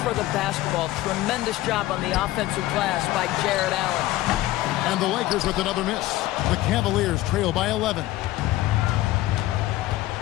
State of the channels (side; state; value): right; quieter; 16.2 dB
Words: for the basketball. Tremendous job on the offensive glass by Jared Allen. And the Lakers with another miss. The Cavaliers trail by 11.